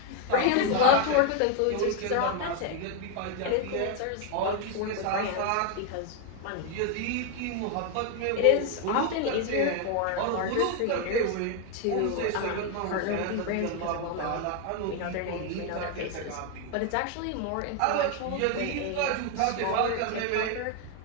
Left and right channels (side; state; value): both; different; correlation 0.01